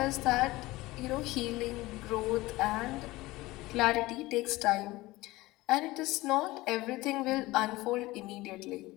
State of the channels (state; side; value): quieter; right; 19.4 dB